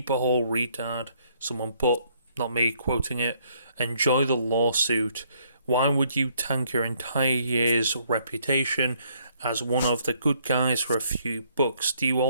hole, retard. Someone put, not me quoting it, "Enjoy the lawsuit. Why would you tank your entire year's reputation as one of the good guys for a few bucks? Do you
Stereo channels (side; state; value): both; inverted; correlation -0.68